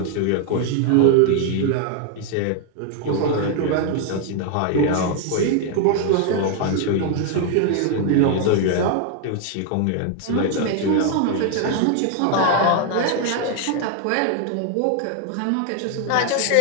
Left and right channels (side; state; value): both; different; correlation 0.00